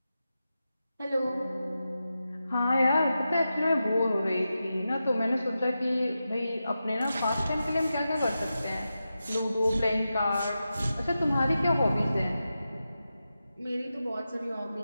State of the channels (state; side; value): inverted; both; correlation -0.91